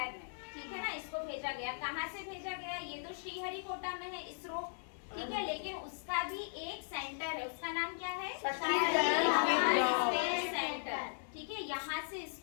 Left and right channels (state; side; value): silent; right; digital silence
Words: में, ठीक है ना। इसको भेजा गया। कहाँ से भेजा गया? ये तो श्रीहरिकोटा में है, इसरो, ठीक है। लेकिन उसका भी एक सेंटर है। उसका नाम क्या है? स्पेस सेंटर, ठीक है। यहाँ से